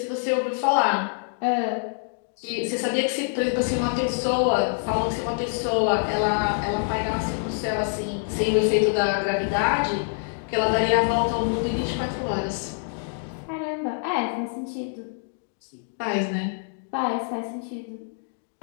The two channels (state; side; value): silent; right; digital silence